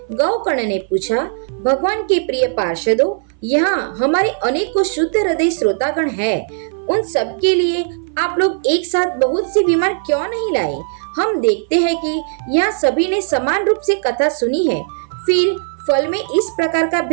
गौकर्ण ने पूछा, भगवान के प्रिय पार्षदों, यहाँ हमारे अनेकों शुद्ध हृदय श्रोतागण हैं। उन सब के लिए आप लोग एक साथ बहुत से विमान क्यों नहीं लाए? हम देखते हैं कि यहाँ सभी ने समान रूप से कथा सुनी है, फिर फल में इस प्रकार का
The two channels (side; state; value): left; silent; 59 dB below the other